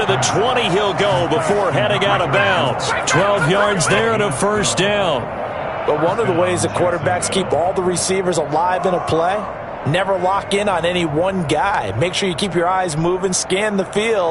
the 20 he'll go before heading out of bounds. 12 yards there and a 1st down. But one of the ways the quarterbacks keep all the receivers alive in a play, never lock in on any one guy. Make sure you keep your eyes moving, scan the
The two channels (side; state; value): both; identical; correlation 1.00